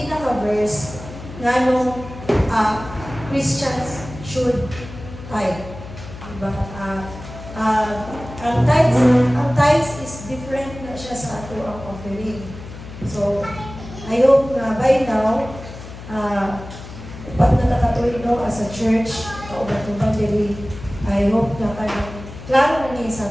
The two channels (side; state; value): left; noise; hum, 13 dB below the sound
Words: nga nung Christians should tithe. Diba? Ang tithes is different na siya sa ato ang offering. So, I hope na by now, pag nakakatuloy no, as a church, kaubat-ubat diri, I hope na klaro na niya